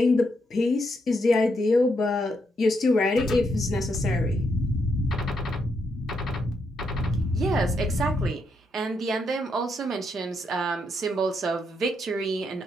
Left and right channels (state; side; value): normal; both; correlation 0.79